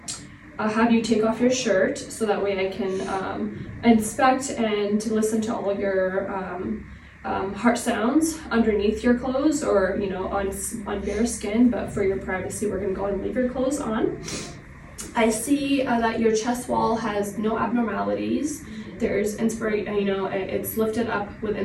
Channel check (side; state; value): both; identical; correlation 1.00